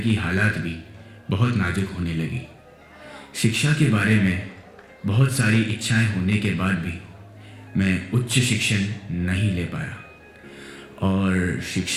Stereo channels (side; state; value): both; identical; correlation 1.00